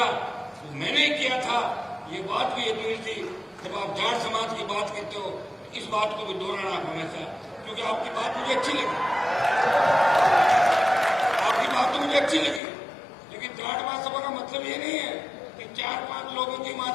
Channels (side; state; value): right; drops out; at 12.6 s